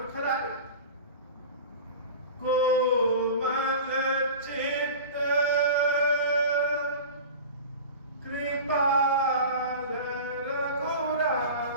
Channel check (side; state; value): both; inverted; correlation -0.34